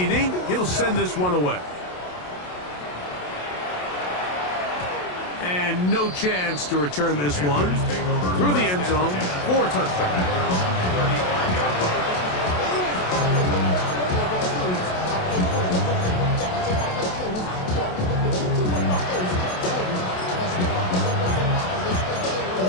he'll send this one away. And no chance to return this one through the end zone for a touchback.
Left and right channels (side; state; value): right; late; 27 ms